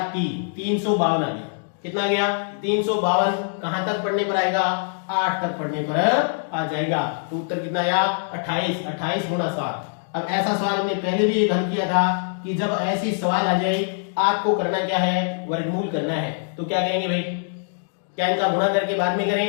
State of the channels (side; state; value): right; silent; digital silence